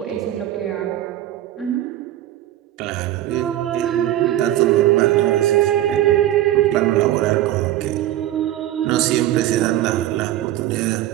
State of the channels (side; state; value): left; quieter; 13.4 dB